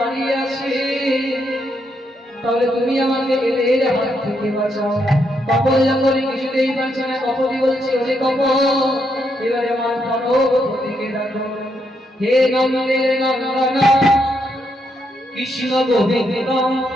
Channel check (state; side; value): normal; both; correlation 0.78